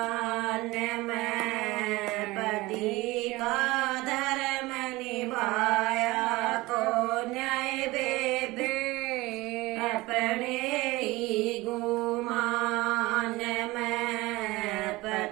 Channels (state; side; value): quieter; left; 20.7 dB